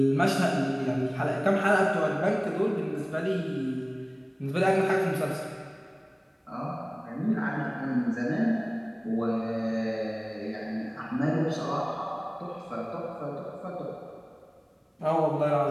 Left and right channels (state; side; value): identical; both; correlation 1.00